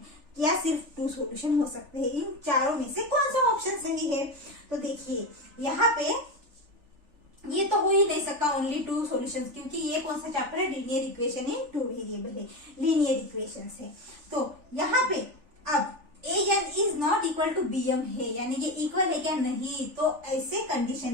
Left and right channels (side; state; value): left; late; 3.4 ms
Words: या सिर्फ 2 सॉल्यूशन हो सकते हैं। इन चारों में से कौन सा ऑप्शन सही है? तो देखिए यहाँ पे ये तो हो ही नहीं सकता ओनली 2 सॉल्यूशंस, क्योंकि ये कौन सा चैप्टर है? लीनियर इक्वेशन इन 2 वेरिएबल है, लीनियर इक्वेशंस है। तो यहाँ पे अब an is not equal to bm है, यानी ये इक्वल है क्या? नहीं। तो ऐसे